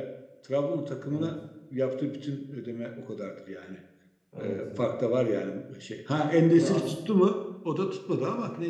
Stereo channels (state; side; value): identical; both; correlation 1.00